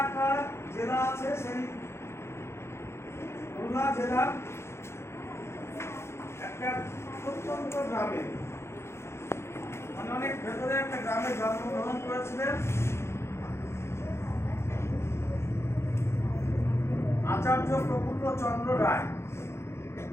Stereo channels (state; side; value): late; right; 0.13 ms